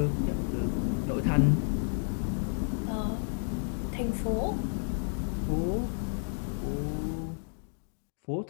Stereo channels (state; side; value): silent; right; digital silence